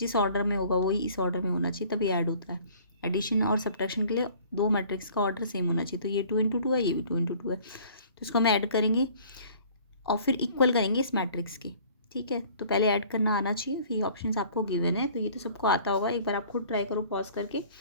ऑर्डर में होगा वही इस ऑर्डर में होना चाहिए, तभी ऐड होता है। एडिशन और सब्ट्रैक्शन के लिए दो मैट्रिक्स का ऑर्डर सेम होना चाहिए। तो ये 2 × 2 है, ये भी 2 × 2 है। तो इसको हम ऐड करेंगे और फिर इक्वल करेंगे इस मैट्रिक्स के। ठीक है, तो पहले ऐड करना आना चाहिए, फिर ये ऑप्शंस आपको गिवन है। तो ये तो सबको आता होगा, एक बार आप खुद ट्राई करो पॉज करके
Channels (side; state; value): both; inverted; correlation -0.52